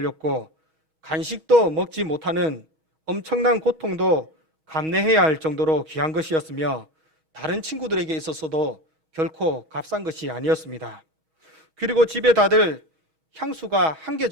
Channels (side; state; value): left; late; 6.3 ms